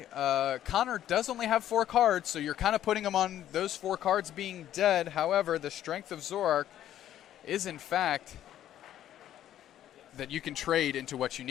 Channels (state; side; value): quieter; right; 11.7 dB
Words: Connor does only have 4 cards, so you're kind of putting him on those 4 cards being dead. However, the strength of Zoroark is, in fact, that you can trade into what you